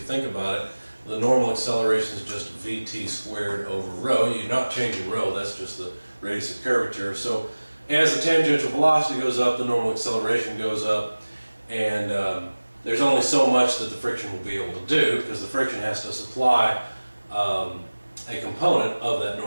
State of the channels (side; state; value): both; inverted; correlation -1.00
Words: think about it, the normal acceleration is just VT squared over rho. You're not changing rho, that's just the radius of curvature. So as the tangential velocity goes up, the normal acceleration goes up, and there's only so much that the friction will be able to do because the friction has to supply a component of that